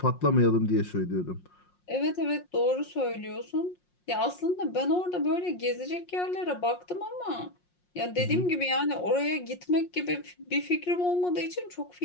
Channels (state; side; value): late; right; 5.6 ms